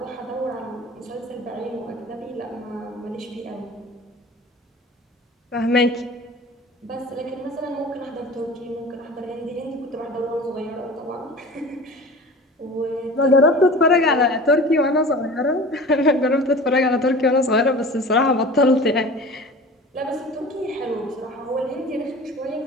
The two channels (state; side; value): normal; both; correlation 0.39